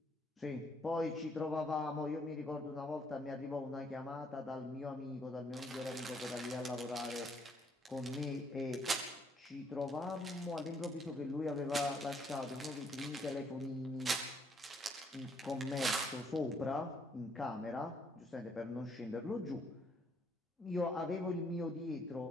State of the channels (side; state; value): both; normal; correlation 0.69